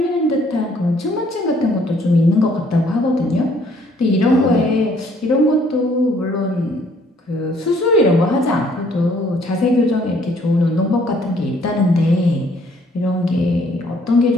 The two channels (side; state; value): both; normal; correlation 0.63